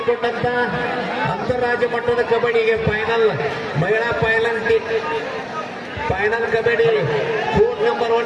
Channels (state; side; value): identical; both; correlation 1.00